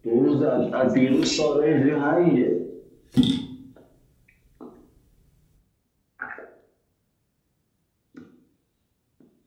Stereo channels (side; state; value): both; identical; correlation 1.00